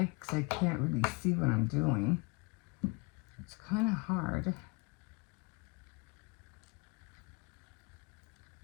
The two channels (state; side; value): quieter; right; 29.4 dB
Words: because I can't really see what I'm doing. It's kind of hard.